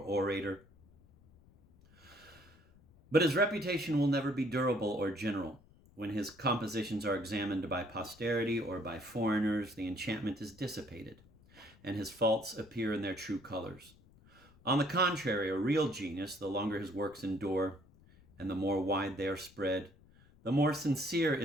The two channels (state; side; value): noise; left; rumble, 26 dB below the sound